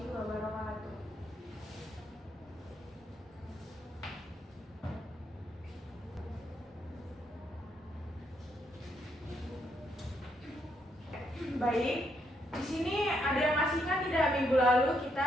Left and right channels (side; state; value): both; normal; correlation 0.76